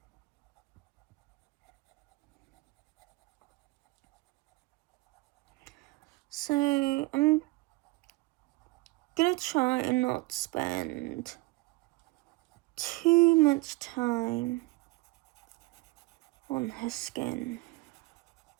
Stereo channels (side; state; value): left; quieter; 22.0 dB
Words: So I'm gonna try and not spend too much time on her skin.